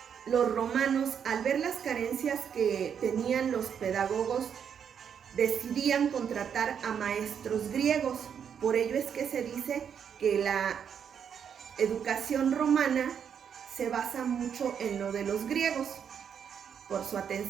los romanos, al ver las carencias que tenían los pedagogos, decidían contratar a maestros griegos. Por ello es que se dice que la educación romana se basa mucho en lo de los griegos. Por su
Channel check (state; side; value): quieter; left; 7.8 dB